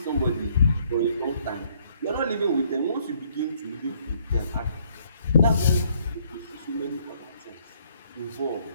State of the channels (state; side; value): inverted; both; correlation -0.65